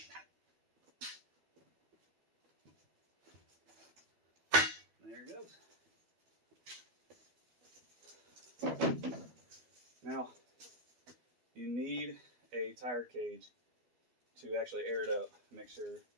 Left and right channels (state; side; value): late; left; 12 ms